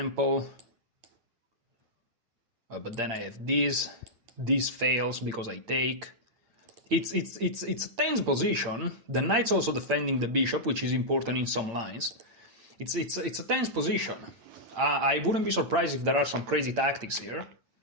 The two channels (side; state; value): left; late; 8.8 ms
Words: But then I have this. This fails because I take. It's a tense position. The knight's also defending the bishop, which is important in some lines. It's a tense position. I wouldn't be surprised if there are some crazy tactics here.